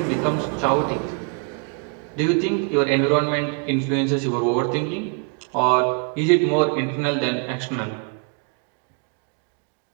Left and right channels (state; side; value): quieter; left; 38.7 dB